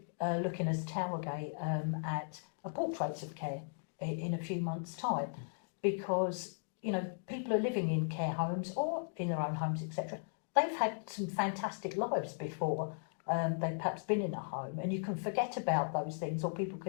looking as Towergate at a portraits of care in a few months' time, because people are living in care homes or in their own homes, etc. They've had some fantastic lives before they've perhaps been in a home, and you can forget about those things, or people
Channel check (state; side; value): silent; right; digital silence